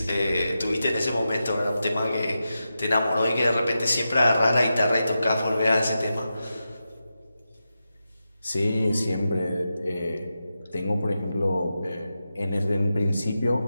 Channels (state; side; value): inverted; both; correlation -0.90